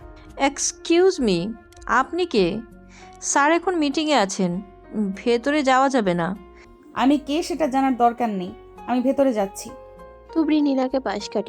এক্সকিউজ মি, আপনি কে? স্যার এখন মিটিংয়ে আছেন, ভেতরে যাওয়া যাবে না। আমি কে সেটা জানার দরকার নেই, আমি ভেতরে যাচ্ছি। তুবড়ি নীলাকে পাশ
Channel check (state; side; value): identical; both; correlation 1.00